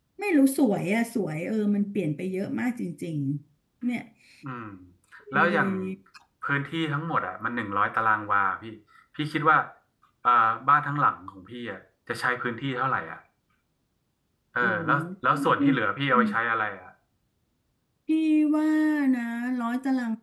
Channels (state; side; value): identical; both; correlation 1.00